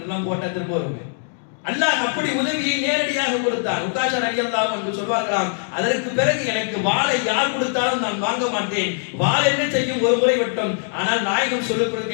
போட்டா திரும்ப வருங்க. அல்லாஹ் அப்படி உதவியை நேரடியாக கொடுத்தான். உக்காஷா ரலியல்லாஹு அன்ஹு சொல்வார்களாம், அதற்கு பிறகு எனக்கு வாளை யார் கொடுத்தாலும் நான் வாங்க மாட்டேன். வாள் என்ன செய்யும்? ஒரு முறை மட்டும். ஆனால் நாயகம் சொல்லிக்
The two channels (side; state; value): right; silent; 64 dB below the other